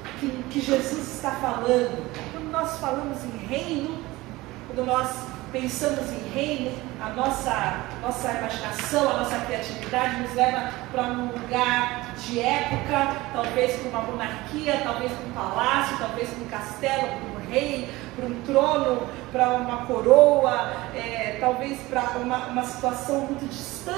que Jesus está falando? Quando nós falamos em reino, quando nós pensamos em reino, a nossa imaginação, a nossa criatividade nos leva para um lugar de época, talvez para uma monarquia, talvez para um palácio, talvez para um castelo, para um rei, para um trono, para uma coroa, talvez para uma situação muito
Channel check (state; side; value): quieter; left; 19.8 dB